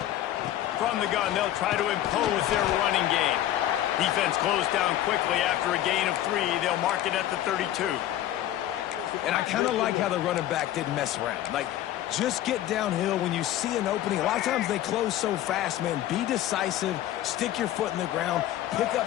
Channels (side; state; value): right; quieter; 13.0 dB